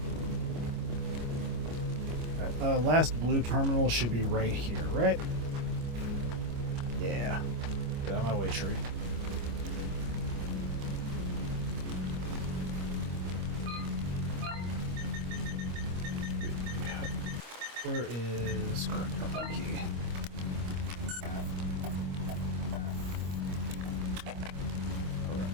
Last blue terminal should be right here, right? Yeah. Get out of my way, tree. Where is current terminal key?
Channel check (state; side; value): late; left; 25 ms